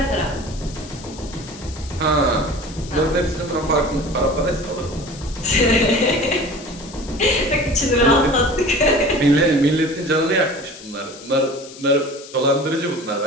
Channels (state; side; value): noise; left; hiss, 17 dB below the sound